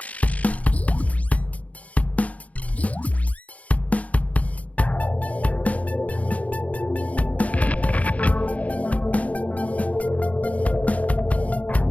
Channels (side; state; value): right; late; 0.068 ms